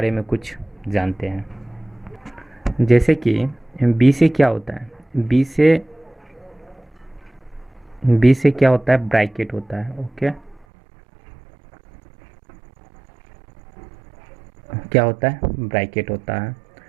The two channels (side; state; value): left; drops out; at 10.7 s